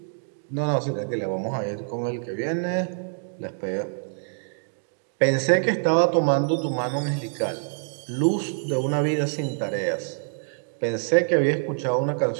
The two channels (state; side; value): silent; left; digital silence